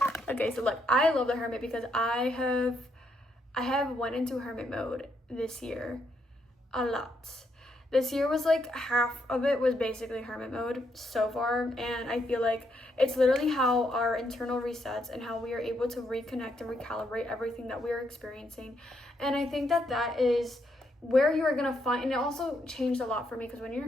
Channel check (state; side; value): normal; both; correlation 0.77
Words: Okay, so look, I love the Hermit because I have went into Hermit mode this year a lot. This year was like half of it was basically Hermit mode so far, and I feel like it's literally how our internal resets and how we are able to reconnect and recalibrate everything that we are experiencing. And I think that is where you are going to find, and it also changed a lot for me because when you're